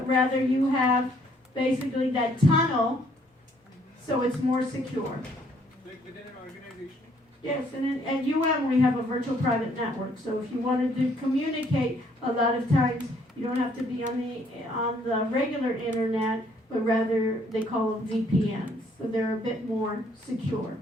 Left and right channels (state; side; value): normal; both; correlation 0.65